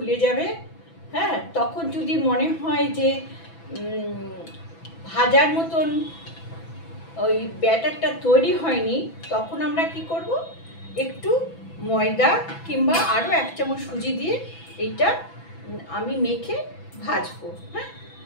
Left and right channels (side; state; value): right; late; 6.0 ms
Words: যাবে, হ্যাঁ। তখন যদি মনে হয় যে ভাজার মতন ওই ব্যাটারটা তৈরি হয়নি, তখন আমরা কি করব, একটু ময়দা কিংবা আরও 1 চামচ সুজি দিয়ে এইটা আমি মেখে ভাজবো, হ্যাঁ।